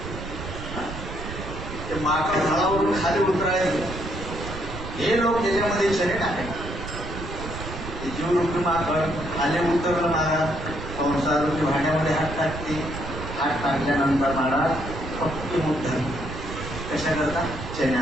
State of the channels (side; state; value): right; noise; rumble, 9 dB below the sound